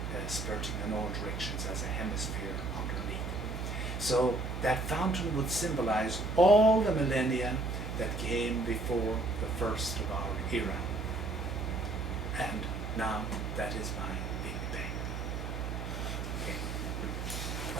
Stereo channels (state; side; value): noise; right; hum, 4 dB below the sound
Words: spurting in all directions as a hemisphere underneath. So that fountain would symbolize all the millennia that came before the first of our era. And now that is my Big Bang. Okay.